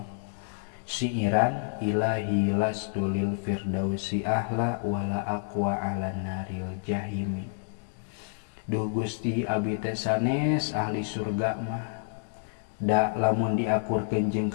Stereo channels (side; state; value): right; silent; digital silence